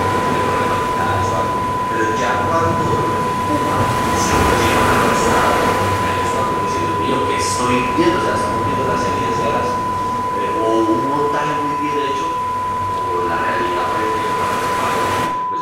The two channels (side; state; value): both; identical; correlation 1.00